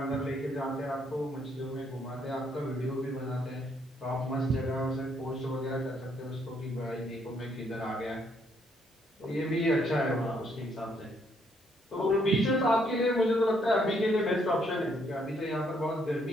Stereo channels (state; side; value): normal; both; correlation 0.71